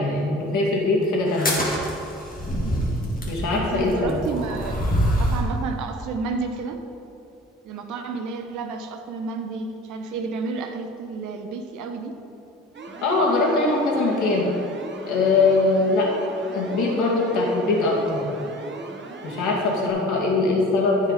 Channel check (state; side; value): normal; both; correlation 0.41